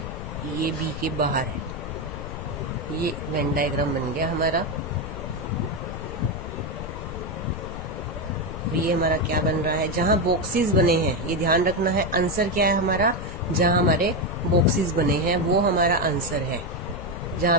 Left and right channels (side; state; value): left; noise; rumble, 7 dB below the sound